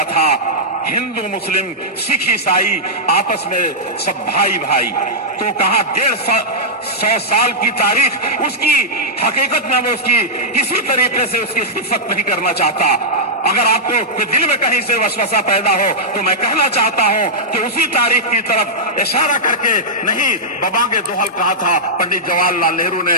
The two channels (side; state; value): both; normal; correlation -0.11